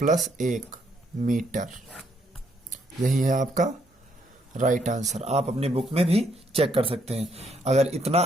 1 मीटर। यही है आपका राइट आंसर। आप अपनी बुक में भी चेक कर सकते हैं। अगर इतना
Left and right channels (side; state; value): both; normal; correlation 0.72